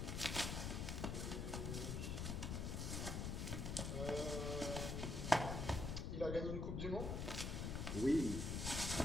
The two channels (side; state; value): left; noise; rumble, 1 dB below the sound